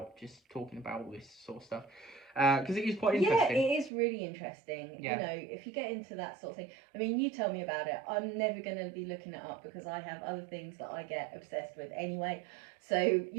just talking about all this sort of stuff. Because it is quite interesting. Yeah, it is really interesting. Yeah. You know, if you get into that sort of thing, I mean, you tell me about it. I'm never going to be looking it up because I have other things that I get obsessed with anyway. So,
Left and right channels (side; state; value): left; drops out; at 3.9 s